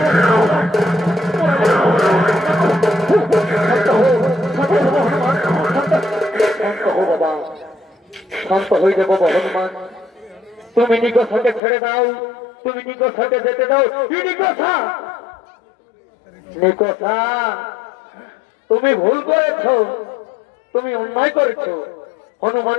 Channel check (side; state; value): right; drops out; at 11.6 s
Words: বাবা শান্ত হয়ে যাবো হনুমান তুমি নিকটটাকে ছেড়ে দাও তুমি নিকটটাকে যেতে দাও নিকটটা নিকটটা তুমি ভুল করেছ তুমি অন্যায় করেছ